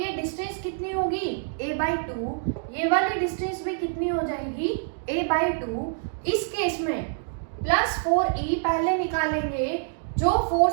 डिस्टेंस कितनी होगी? A/2। ये वाली डिस्टेंस भी कितनी हो जाएगी? A/2। इस केस में +4e पहले निकालेंगे। जो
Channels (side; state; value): left; silent; digital silence